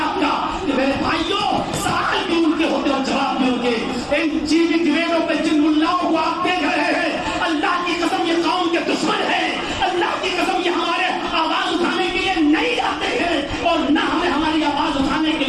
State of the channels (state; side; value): identical; both; correlation 1.00